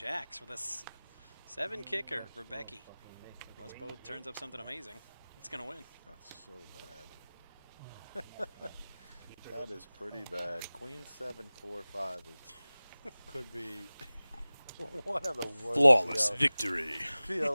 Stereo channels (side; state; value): both; inverted; correlation -0.99